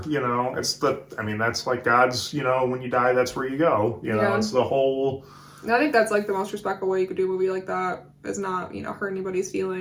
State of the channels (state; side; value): identical; both; correlation 1.00